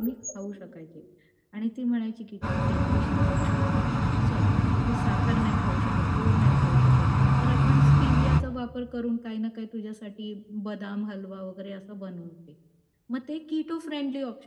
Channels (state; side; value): identical; both; correlation 1.00